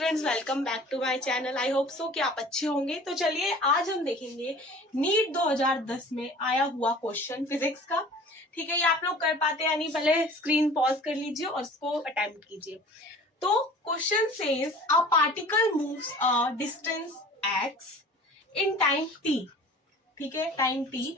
welcome back to my channel. I hope so कि आप अच्छे होंगे। तो चलिए आज हम देखेंगे नीट 2010 में आया हुआ क्वेश्चन फिजिक्स का। ठीक है, ये आप लोग कर पाते हैं नहीं, पहले स्क्रीन पॉज कर लीजिए और इसको अटेम्प्ट कीजिए। तो question says a particle moves a distance x in time t। ठीक है, time t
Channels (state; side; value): normal; both; correlation 0.45